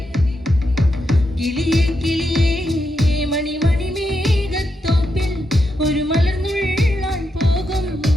കിളിയേ കിളിയേ മണിമണി മേഘത്തോപ്പിൽ ഒരു മലർന്നുള്ളാൻ പോകും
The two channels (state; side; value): normal; both; correlation 0.84